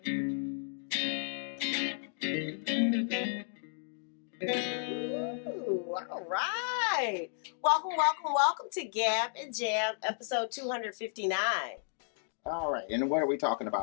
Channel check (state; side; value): silent; right; digital silence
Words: all right. Welcome to Gab and Jam, episode 259. All right, and what are we talking